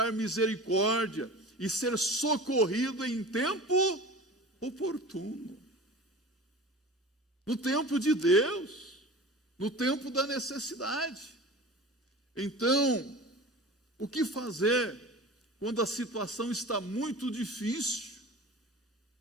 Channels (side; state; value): both; normal; correlation 0.36